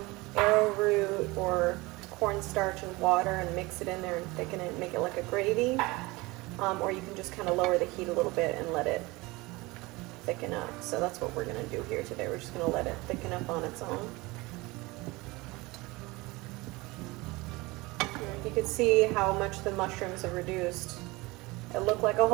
arrowroot or cornstarch and water and mix it in there and thicken it and make it like a gravy. Or you can just kind of lower the heat a little bit and let it thicken up. So that's what we're going to do here today. We're just going to let it thicken up on its own. You can see how much the mushrooms have reduced. It looked like a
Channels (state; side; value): quieter; left; 22.7 dB